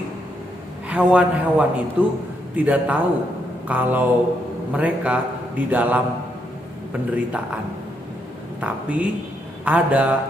hewan-hewan itu tidak tahu kalau mereka di dalam penderitaan. Tapi ada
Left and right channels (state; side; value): normal; both; correlation 0.78